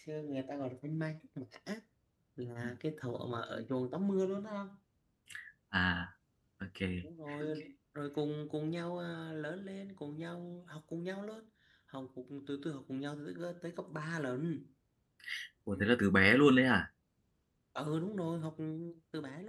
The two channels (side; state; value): both; identical; correlation 1.00